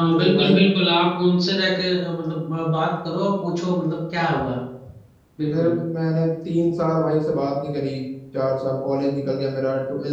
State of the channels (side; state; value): both; identical; correlation 1.00